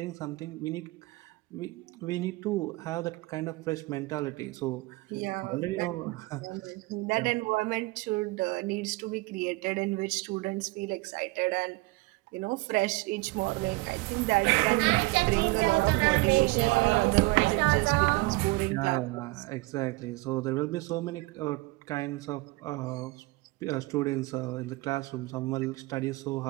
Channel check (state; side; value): quieter; left; 22.9 dB